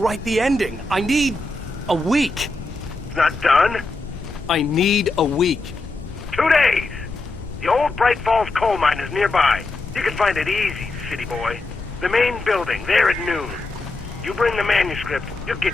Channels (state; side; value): quieter; right; 3.1 dB